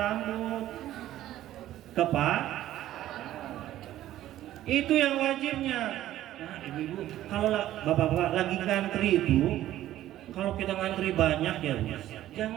Itu yang wajibnya. Nah, ibu-ibu, kalau bapak-bapak lagi ngantri itu, kalau kita ngantri banyak ya,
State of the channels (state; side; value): quieter; left; 13.5 dB